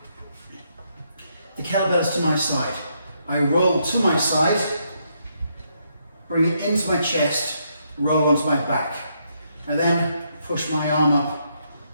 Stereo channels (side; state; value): both; inverted; correlation -0.76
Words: The kettlebell's to my side. I roll to my side, bring it into my chest, roll onto my back. And then push my arm up